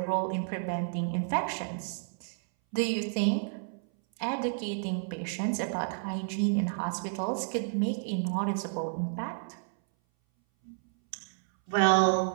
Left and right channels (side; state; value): left; silent; 57 dB below the other